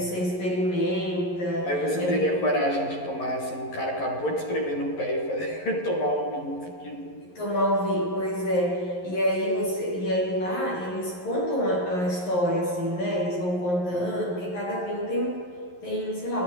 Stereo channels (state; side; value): late; right; 11 ms